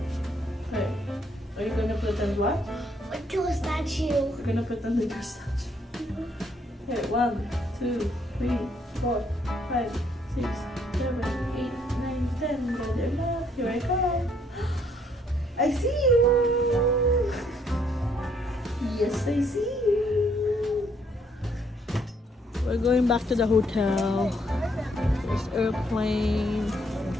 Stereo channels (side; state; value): both; normal; correlation 0.68